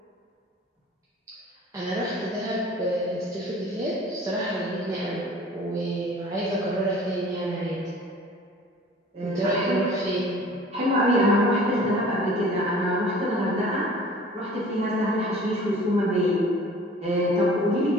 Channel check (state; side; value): normal; both; correlation 0.47